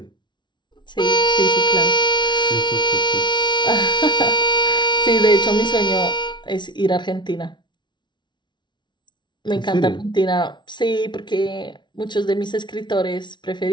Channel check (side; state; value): right; late; 0.22 ms